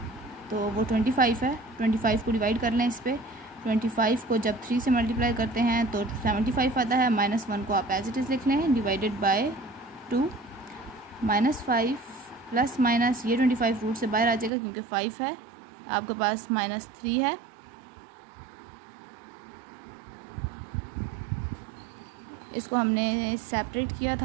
तो वो 25 है, 25 को डिवाइड कर लें इस पर। 25 को जब 3 से मल्टीप्लाई करते हैं तो 75 आता है। -1 को आप एज इट इज़ लिख लें डिवाइडेड बाय 2। -5 प्लस माइनस ये 25 रूट से बाहर आ जाएगा क्योंकि 5 है, आपके पास -3 है इसको हमने सेपरेट किया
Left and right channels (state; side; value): drops out; left; at 14.5 s